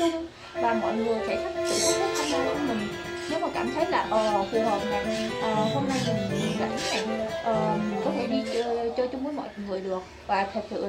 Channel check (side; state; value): both; identical; correlation 1.00